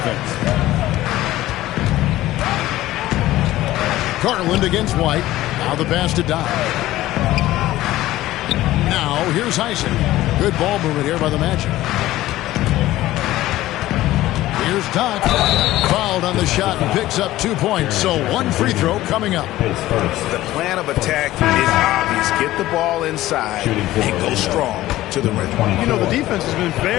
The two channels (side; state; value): right; quieter; 15.8 dB